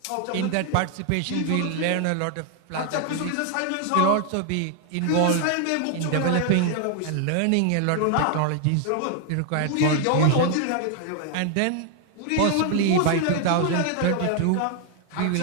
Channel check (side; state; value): both; different; correlation 0.00